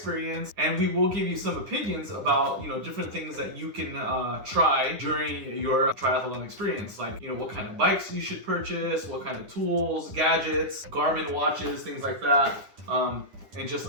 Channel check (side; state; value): left; late; 10 ms